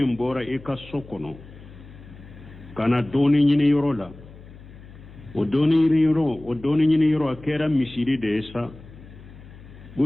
bora e ka sokono kana doni nyini yoro la o doni nyini yoro akera misiri de esa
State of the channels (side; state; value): left; noise; hum, 19 dB below the sound